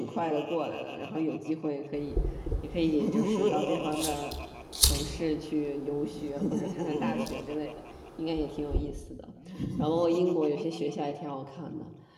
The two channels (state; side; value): identical; both; correlation 1.00